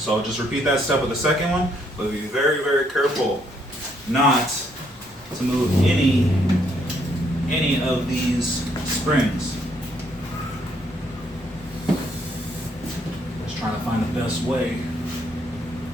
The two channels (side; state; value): both; normal; correlation 0.71